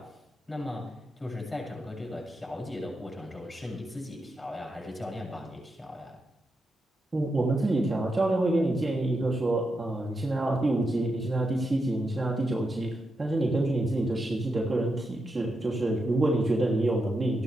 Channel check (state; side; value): normal; both; correlation 0.86